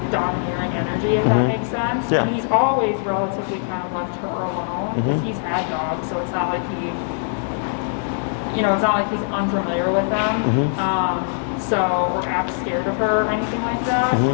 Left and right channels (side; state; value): right; silent; 65 dB below the other